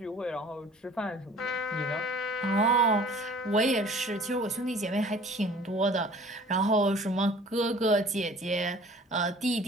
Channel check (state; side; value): normal; both; correlation 0.49